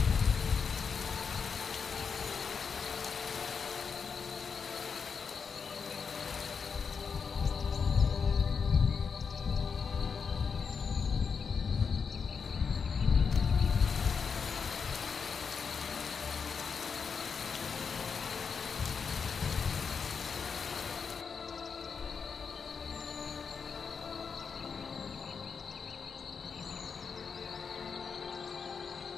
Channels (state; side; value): quieter; right; 5.9 dB